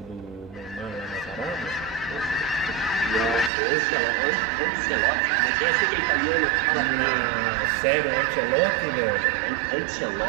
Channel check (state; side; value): drops out; left; at 3.5 s